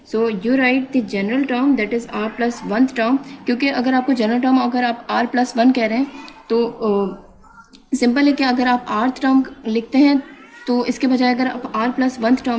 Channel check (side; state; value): both; identical; correlation 1.00